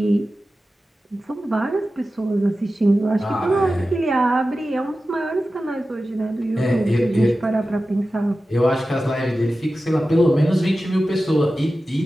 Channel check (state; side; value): normal; both; correlation 0.94